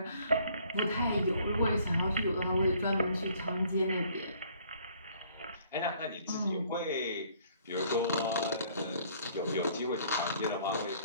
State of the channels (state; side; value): inverted; both; correlation -0.60